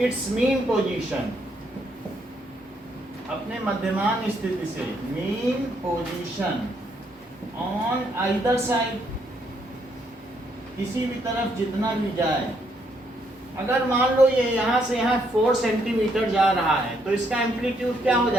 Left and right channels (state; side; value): normal; both; correlation 0.73